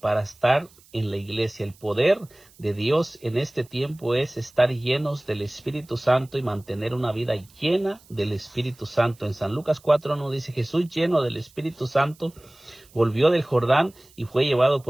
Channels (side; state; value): right; noise; hiss, 28 dB below the sound